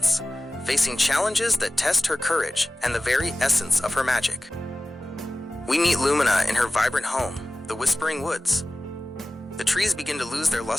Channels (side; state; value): both; normal; correlation 0.96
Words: facing challenges that test her courage and the very essence of her magic. We meet Lumina in her vibrant home, the Whispering Woods. The trees begin to lose their